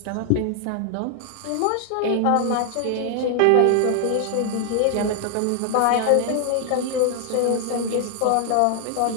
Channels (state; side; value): different; both; correlation 0.00